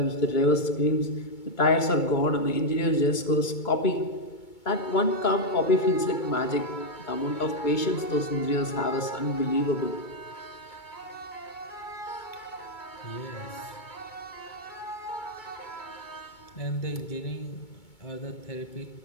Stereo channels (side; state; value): right; late; 2.2 ms